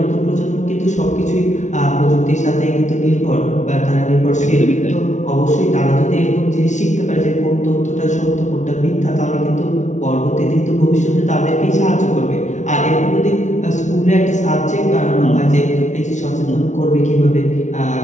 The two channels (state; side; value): late; right; 0.34 ms